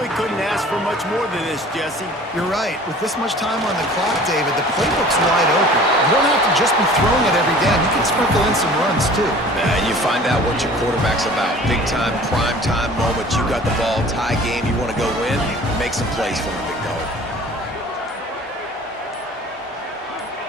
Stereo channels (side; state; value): both; normal; correlation 0.46